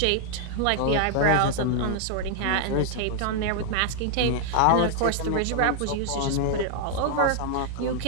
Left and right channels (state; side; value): different; both; correlation -0.01